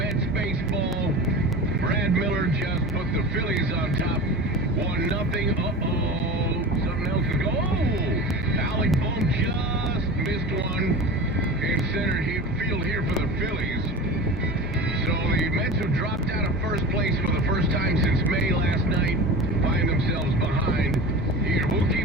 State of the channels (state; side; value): normal; both; correlation 0.32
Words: baseball. Brad Miller just put the Phillies on top. 1-0. Uh-oh. Something else is going. Oh! Alec Bohm just missed one in center field here for the Phillies. So the Mets have dropped out of first place for the first time since May last night find themselves behind. Here, we'll